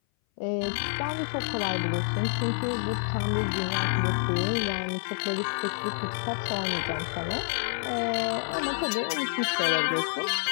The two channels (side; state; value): right; silent; 58 dB below the other